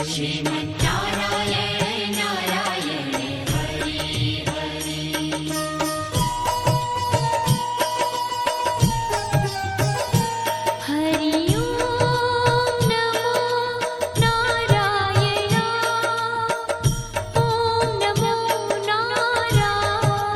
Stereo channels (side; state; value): both; identical; correlation 1.00